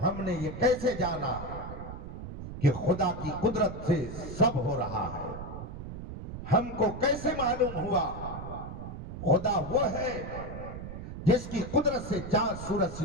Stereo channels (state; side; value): noise; right; rumble, 9 dB below the sound